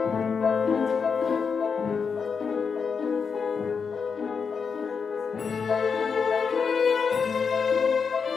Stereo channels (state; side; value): quieter; right; 5.8 dB